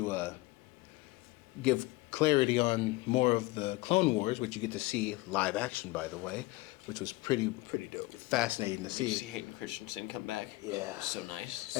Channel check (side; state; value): right; quieter; 21.5 dB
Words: give clarity on more of the Clone Wars, which you get to see live action, by the way, which was pretty dope. fascinating to Did you see see. Hayden Christensen come back? Yeah. So nice.